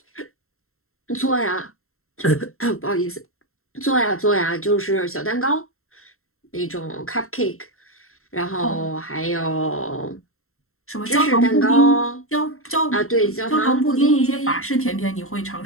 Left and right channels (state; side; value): late; right; 0.62 ms